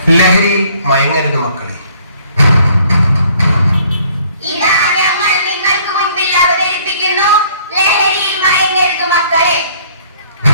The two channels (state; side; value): inverted; both; correlation -0.59